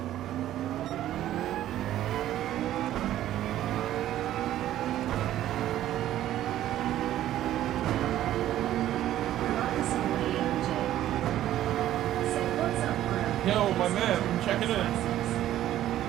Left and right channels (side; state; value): left; quieter; 12.9 dB